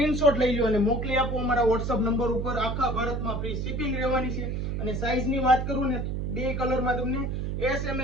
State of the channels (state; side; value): noise; right; hum, 2 dB below the sound